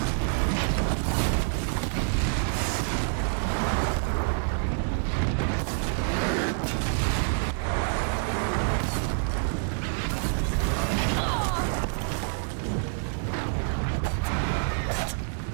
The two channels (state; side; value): silent; left; digital silence